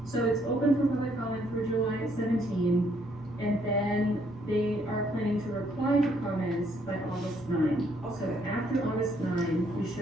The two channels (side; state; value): both; normal; correlation 0.69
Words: So it's open for public comment for July 17, and then they are planning to reply to comments by August 9. So after August 9, we